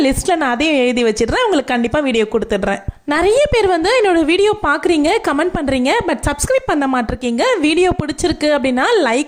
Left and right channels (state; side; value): identical; both; correlation 1.00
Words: லிஸ்ட்ல நான் அதையும் எழுதி வச்சிடுறேன். உங்களுக்கு கண்டிப்பா வீடியோ கொடுத்துடுறேன். நிறைய பேர் வந்து என்னோட வீடியோ பார்க்குறீங்க, கமெண்ட் பண்ணுறீங்க, பட் சப்ஸ்கிரைப் பண்ண மாட்டிருக்கீங்க. வீடியோ பிடிச்சிருக்கு அப்படின்னா